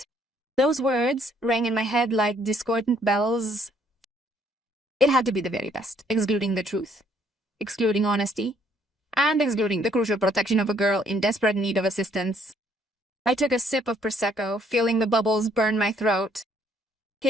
Those words rang in my head like discordant bells. It had to be the very best, excluding the truth, excluding honesty, and excluding the crucial protection of a girl in desperate need of assistance. I took a sip of Prosecco, feeling the bubbles burn my throat.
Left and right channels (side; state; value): both; normal; correlation 0.65